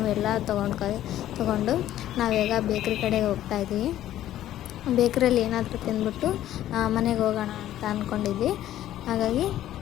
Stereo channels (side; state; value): right; quieter; 12.8 dB